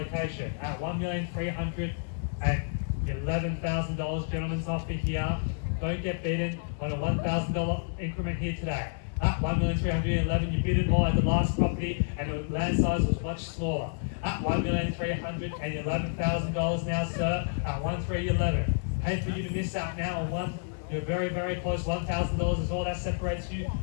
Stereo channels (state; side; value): silent; right; 58 dB below the other